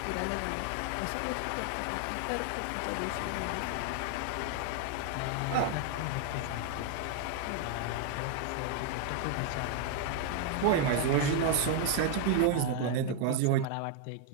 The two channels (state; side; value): different; both; correlation 0.00